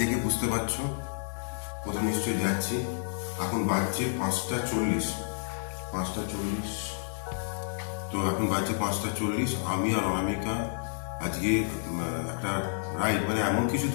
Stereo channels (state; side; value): silent; right; digital silence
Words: দেখে বুঝতে পারছো কোথাও নিশ্চয়ই যাচ্ছি। এখন বাজছে 5:40। তো এখন বাজছে 5:40। আমি আর অনামিকা আজকে একটা রাইড, মানে এমন কিছু